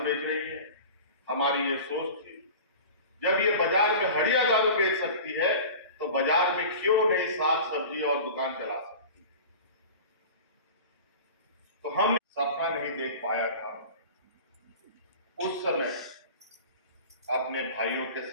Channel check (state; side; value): inverted; both; correlation -0.37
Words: रही हैं, हमारी ये सोच थी, जब ये बाजार में हड़िया दारू बेच सकती है तो बाजार में क्यों नहीं साग सब्जी और दुकान चला सकती। तो हम सपना नहीं देख पाया था उस समय अपने भाइयों के